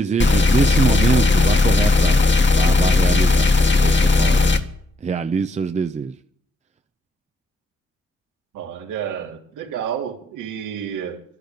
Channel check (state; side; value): normal; both; correlation 0.76